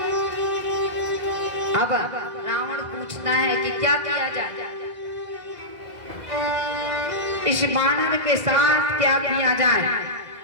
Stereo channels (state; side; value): late; left; 2.0 ms